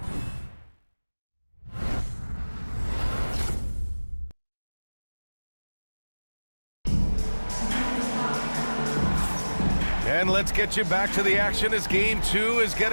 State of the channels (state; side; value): inverted; both; correlation -1.00